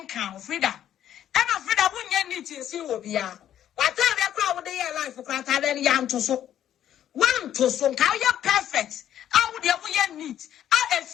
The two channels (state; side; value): quieter; right; 10.8 dB